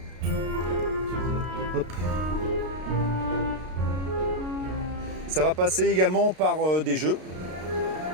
Hop. Ça va passer également par des jeux.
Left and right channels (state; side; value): late; left; 33 ms